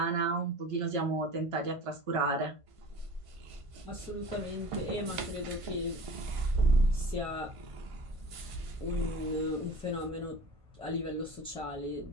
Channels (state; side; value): late; left; 1.5 ms